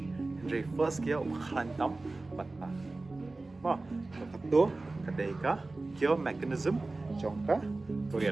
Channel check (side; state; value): left; quieter; 3.2 dB